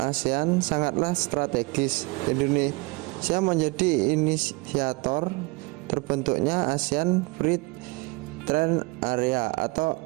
sangatlah strategis. Indonesia menjadi inisiator terbentuknya ASEAN Free Trade Area atau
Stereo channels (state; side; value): quieter; left; 26.1 dB